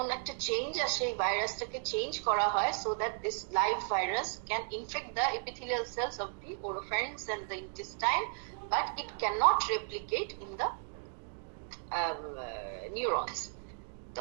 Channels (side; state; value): left; silent; 55 dB below the other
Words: একটা চেঞ্জ আসে, এই ভাইরাসটাকে চেঞ্জ করা হয় so that this live virus can infect the epithelial cells of the oropharynx and the intestine, but it cannot replicate in the neurons.